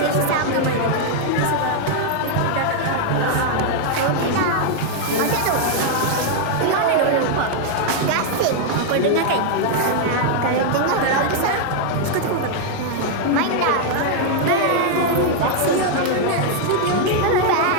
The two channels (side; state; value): both; different; correlation 0.00